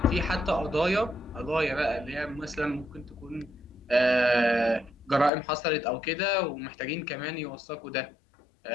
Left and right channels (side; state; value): right; drops out; at 5.3 s